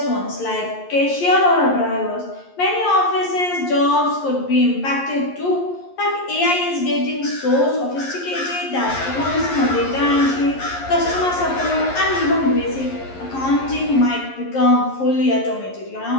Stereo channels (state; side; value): late; right; 11 ms